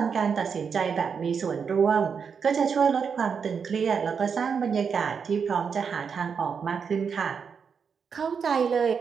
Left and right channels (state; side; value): quieter; left; 6.3 dB